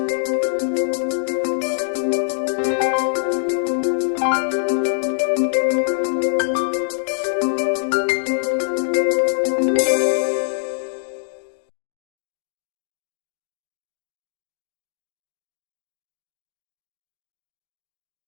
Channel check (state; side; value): silent; right; digital silence